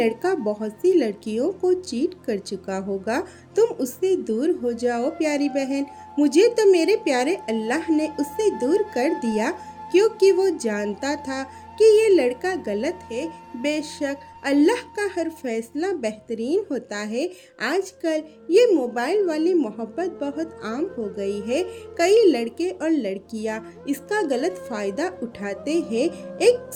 बहुत सी लड़कियों को चीट कर चुका होगा। तुम उससे दूर हो जाओ प्यारी बहन। मुझे तो मेरे प्यारे अल्लाह ने उससे दूर कर दिया, क्योंकि वो जानता था कि ये लड़का गलत है। बेशक अल्लाह का हर फैसला बेहतरीन होता है। आजकल ये मोबाइल वाली मोहब्बत बहुत आम हो गई है। कई लड़के और लड़कियां इसका गलत फ़ायदा उठाते हैं। एक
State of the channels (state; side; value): identical; both; correlation 1.00